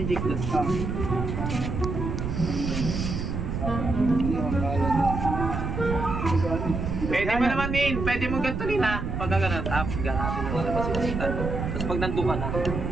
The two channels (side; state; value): right; noise; rumble, 3 dB below the sound